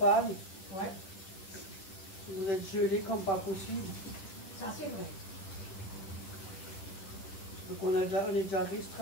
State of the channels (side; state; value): right; late; 10 ms